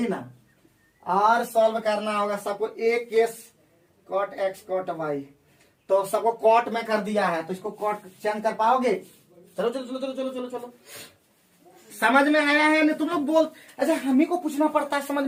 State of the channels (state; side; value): identical; both; correlation 1.00